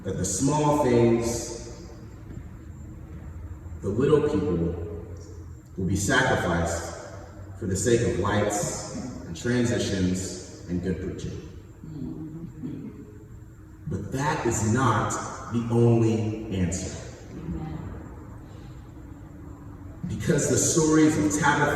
That the small things, the little people, will be sacrificed for the sake of lights and transitions and good preaching. But that is not the only answer. Because the stories of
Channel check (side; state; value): both; identical; correlation 1.00